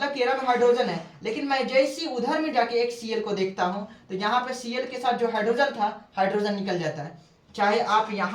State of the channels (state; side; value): identical; both; correlation 1.00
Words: कि में हाइड्रोजन है, लेकिन मैं जैसे उधर में जाके एक Cl को देखता हूँ तो यहाँ पे Cl के साथ जो हाइड्रोजन था, हाइड्रोजन निकल जाता है। चाहे आप